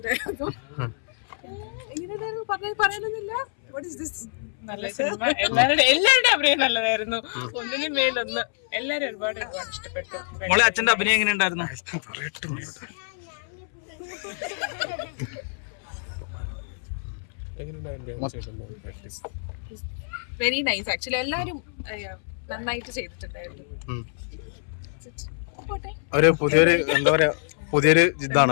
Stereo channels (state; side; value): silent; right; 61 dB below the other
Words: നല്ല സിനിമ. എല്ലാവരുടെ അഭിനയം നല്ലതായിരുന്നു. ഒന്നിനും മേലൊന്ന്. എല്ലാരും ഒരുപാട് ഇഷ്ടപ്പെട്ടു. മോളെ അച്ഛന്റെ അഭിനയം എങ്ങനെയുണ്ടായിരുന്നു? Very nice. ആക്ച്വലി എല്ലാരും നന്നായിട്ട് ചെയ്തിട്ടുണ്ടായിരുന്നു. ഒരു പുതിയൊരു